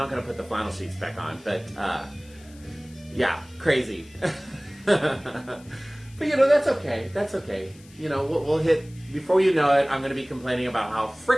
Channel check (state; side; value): noise; left; hiss, 25 dB below the sound